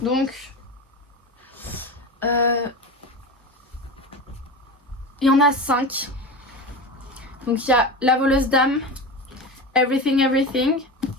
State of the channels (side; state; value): both; normal; correlation 0.26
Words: Donc, il y en a 5. Donc, il y a La voleuse d'âme, Everything Everything,